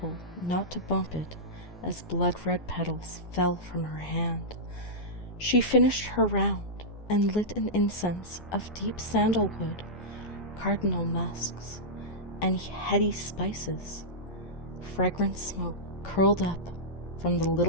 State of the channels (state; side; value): normal; both; correlation -0.12